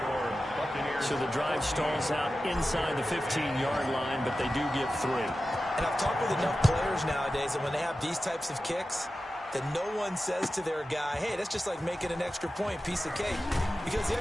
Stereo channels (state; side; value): normal; both; correlation 0.93